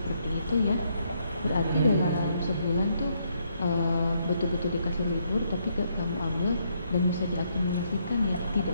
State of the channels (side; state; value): both; inverted; correlation -0.74